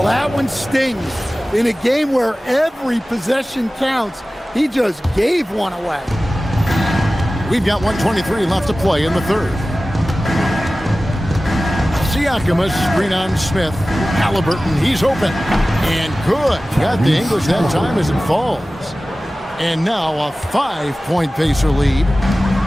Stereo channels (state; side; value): normal; both; correlation 0.96